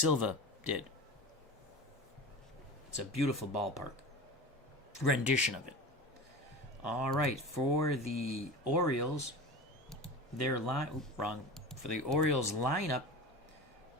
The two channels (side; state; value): both; normal; correlation 0.31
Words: did. It's a beautiful ballpark. Rendition of it. All right, for the Orioles, For the Orioles lineup,